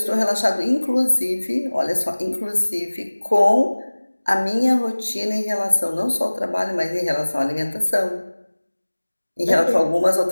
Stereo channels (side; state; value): both; inverted; correlation -1.00